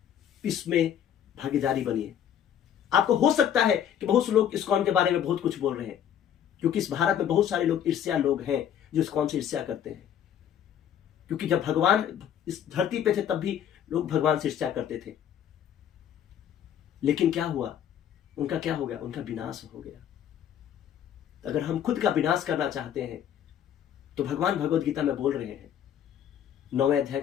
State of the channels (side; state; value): right; quieter; 9.6 dB